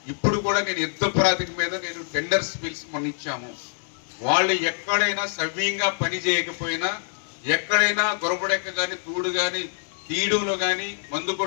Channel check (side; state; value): right; silent; digital silence